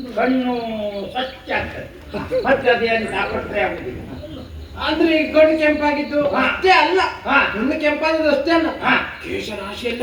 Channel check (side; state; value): both; identical; correlation 1.00